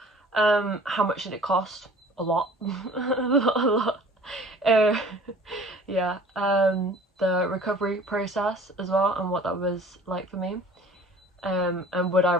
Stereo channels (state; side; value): normal; both; correlation 0.47